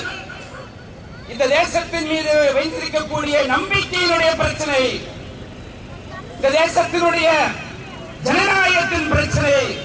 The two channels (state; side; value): identical; both; correlation 1.00